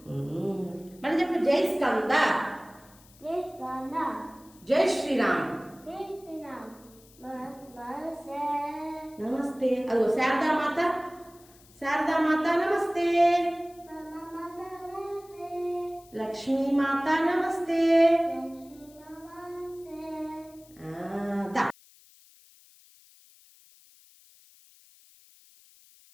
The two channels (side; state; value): left; noise; hiss, 26 dB below the sound